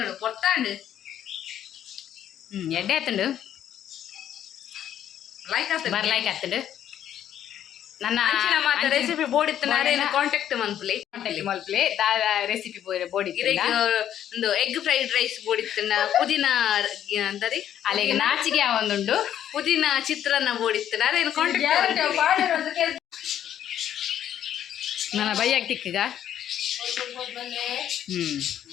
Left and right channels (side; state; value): right; quieter; 10.5 dB